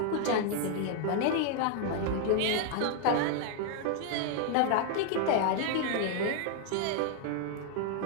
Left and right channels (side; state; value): both; different; correlation 0.00